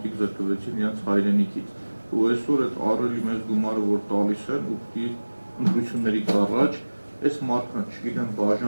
զրկվեցին իրենց հայրենիքից։ Ու այսօր այդ առելի մեծ գումարը, որ տալիս են, ու պիտի ընտրություններից առաջ այս մարդկանց, չգիտեմ,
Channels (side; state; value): both; inverted; correlation -1.00